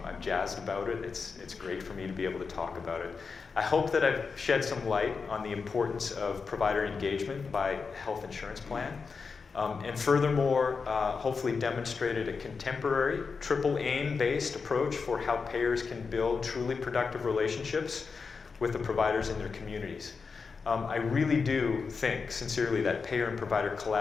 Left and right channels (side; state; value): right; quieter; 5.0 dB